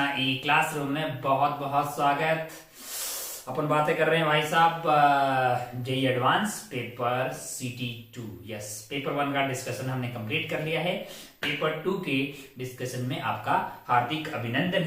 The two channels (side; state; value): both; identical; correlation 1.00